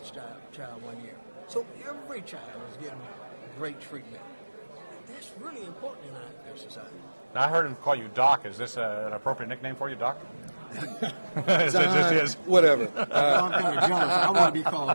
child 1 year. So every child is getting great treatment. That's really important in our society. Now, I heard him call you Doc. Is this an appropriate nickname for you, Doc? It John, just is. whatever. I'm kind of jealous. I want to be called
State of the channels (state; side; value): inverted; both; correlation -1.00